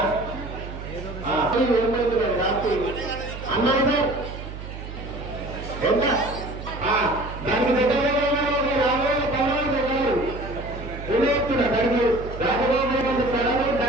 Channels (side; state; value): right; noise; hum, 10 dB below the sound